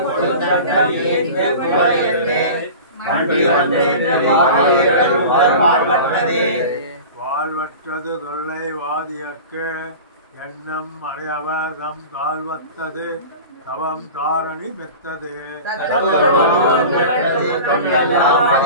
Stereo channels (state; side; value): inverted; both; correlation -0.35